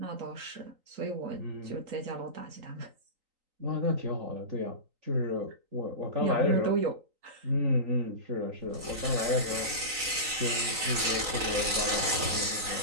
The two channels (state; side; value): late; left; 3.9 ms